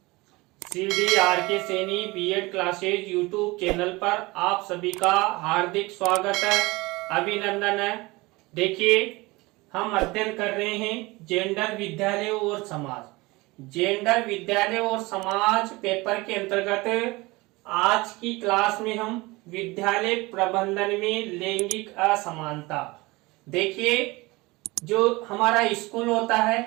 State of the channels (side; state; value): left; quieter; 22.6 dB